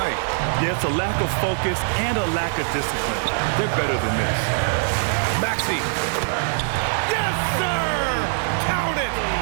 Yeah, it's a lack of focus and a lack of discipline. They're better than this. Maxey. Yes, sir! Count it!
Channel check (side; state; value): left; silent; 64 dB below the other